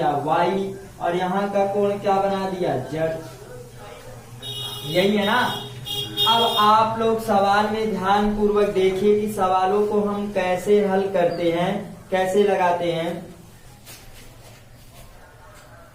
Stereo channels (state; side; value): identical; both; correlation 1.00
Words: y, और यहाँ का कोण क्या बना दिया, z। यही है ना। अब आप लोग सवाल में ध्यान पूर्वक देखिए कि सवालों को हम कैसे हल करते हैं, कैसे लगाते हैं।